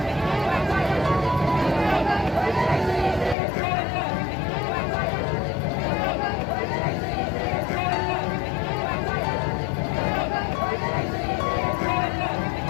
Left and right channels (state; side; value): drops out; right; at 3.4 s